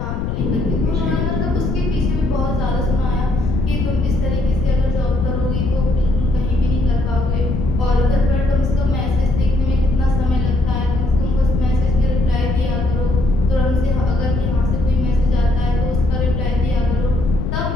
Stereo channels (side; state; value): left; noise; rumble, 3 dB below the sound